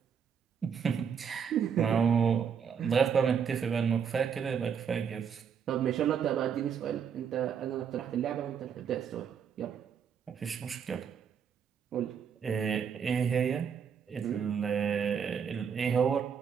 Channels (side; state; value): left; quieter; 7.3 dB